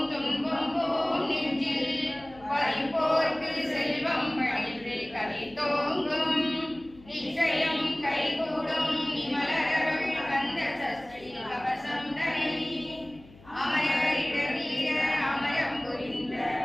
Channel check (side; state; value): left; noise; hum, 23 dB below the sound